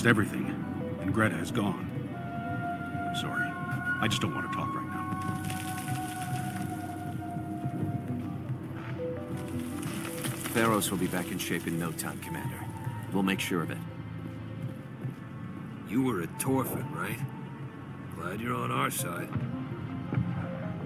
everything, and Greta is gone. I'm sorry. I just don't want to talk right now. Feros will be back in shape in no time, Commander. We'll make sure of it. You were at Torfin, right? Glad you're on our side.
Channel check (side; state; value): both; identical; correlation 1.00